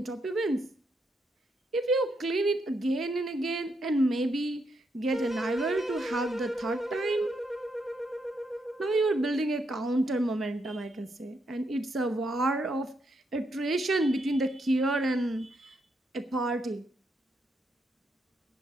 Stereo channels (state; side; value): normal; both; correlation 0.78